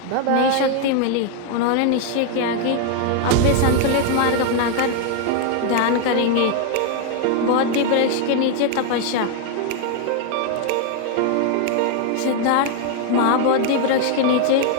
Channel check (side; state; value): both; different; correlation 0.00